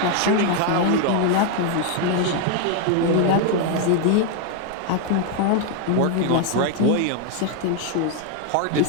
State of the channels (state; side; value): different; both; correlation 0.01